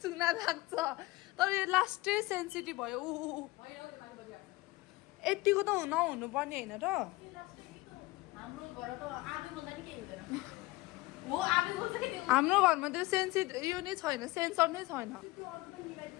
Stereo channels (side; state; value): right; quieter; 21.1 dB